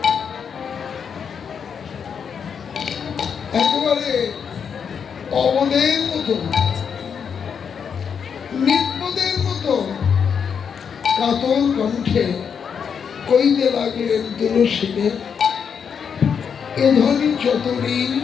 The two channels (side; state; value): right; quieter; 6.9 dB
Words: একেবারে অবদের মতো, নির্বোধের মতো কাতর কণ্ঠে কইতে লাগলেন, তুলসীকে, এ ধনী চতরি